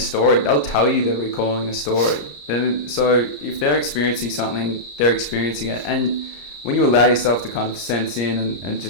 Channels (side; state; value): right; late; 34 ms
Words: they'll tell you they're recalling a story. Then, so if they're experiencing something, they're experiencing it. And when you allow yourself to kind of sense in and